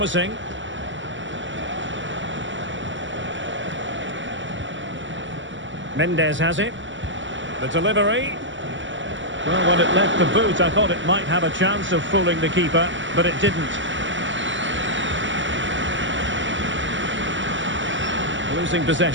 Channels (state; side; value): late; left; 0.55 ms